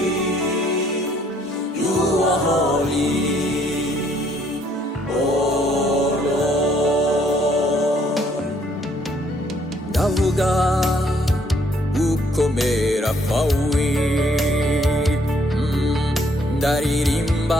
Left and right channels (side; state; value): both; normal; correlation 0.66